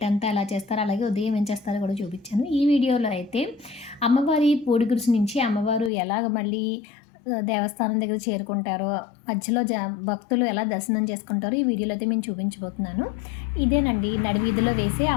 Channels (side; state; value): right; drops out; at 5.9 s